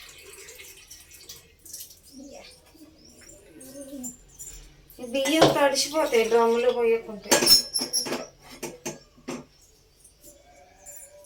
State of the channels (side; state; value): both; identical; correlation 1.00